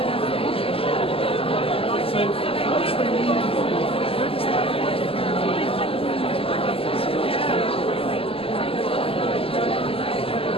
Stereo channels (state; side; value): late; right; 0.27 ms